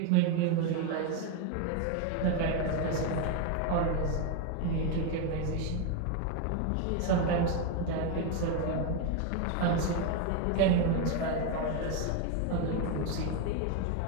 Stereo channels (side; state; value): both; different; correlation 0.02